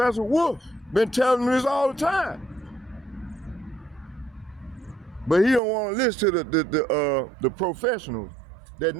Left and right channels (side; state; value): left; drops out; at 5.6 s